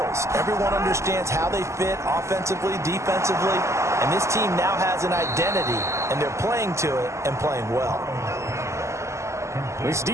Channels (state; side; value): late; left; 0.14 ms